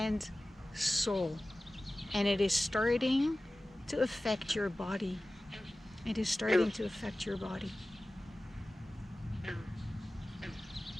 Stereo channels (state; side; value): normal; both; correlation 0.96